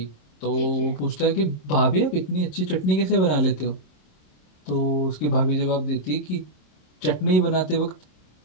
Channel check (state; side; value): late; right; 27 ms